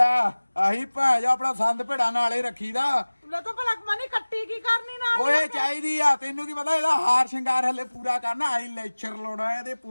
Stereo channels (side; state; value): both; inverted; correlation -1.00